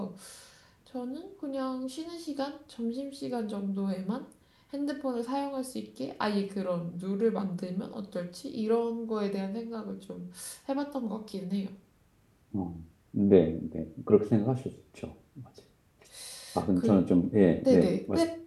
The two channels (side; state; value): both; identical; correlation 1.00